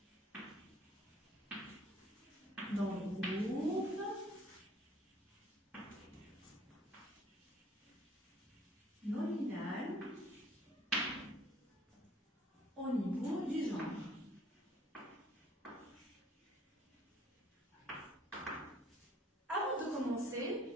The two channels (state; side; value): normal; both; correlation 0.57